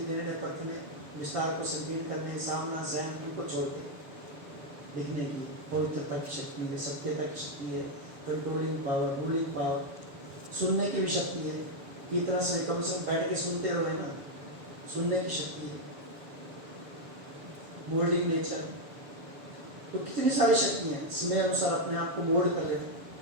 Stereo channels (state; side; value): late; left; 7.0 ms